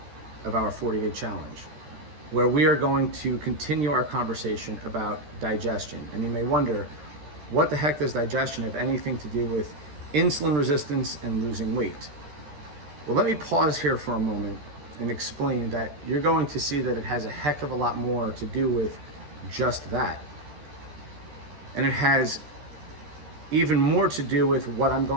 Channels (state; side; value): late; left; 13 ms